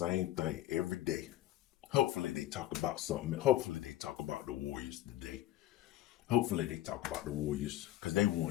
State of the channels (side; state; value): right; quieter; 14.6 dB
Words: thing every day. Hopefully they talk about something. Hopefully they talk about the Warriors today. Hopefully they talk about the Warriors because they